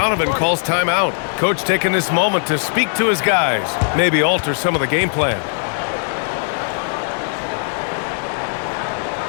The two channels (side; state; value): right; silent; digital silence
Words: calls timeout. Coach taking this moment to speak to his guys, maybe alter some of the game plan.